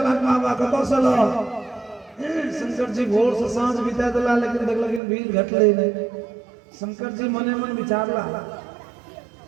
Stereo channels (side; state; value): left; drops out; at 5.0 s